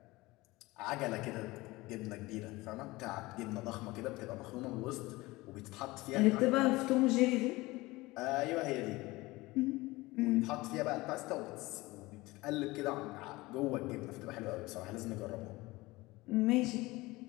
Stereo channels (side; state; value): right; quieter; 20.8 dB